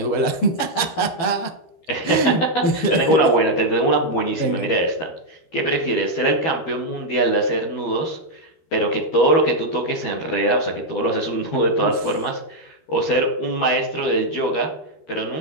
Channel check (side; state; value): right; late; 12 ms